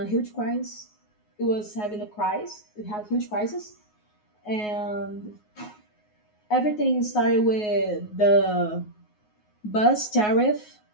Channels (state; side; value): late; right; 9.5 ms